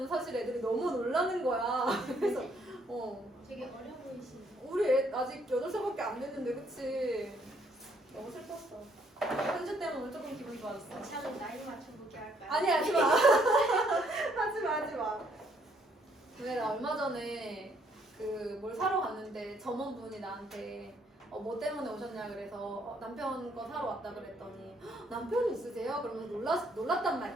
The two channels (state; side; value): normal; both; correlation 0.67